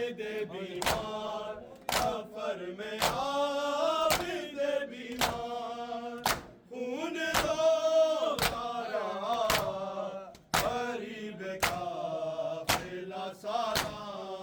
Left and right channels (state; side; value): identical; both; correlation 1.00